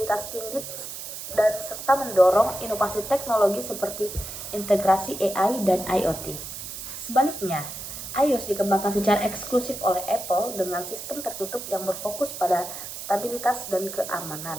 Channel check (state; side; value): noise; right; hiss, 9 dB below the sound